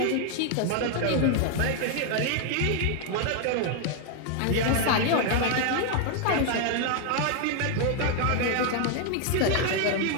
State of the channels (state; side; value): different; both; correlation 0.00